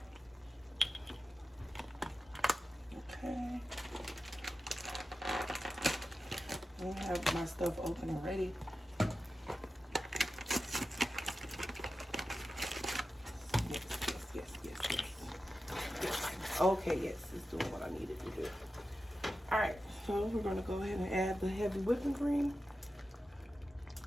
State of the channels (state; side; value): normal; both; correlation 0.92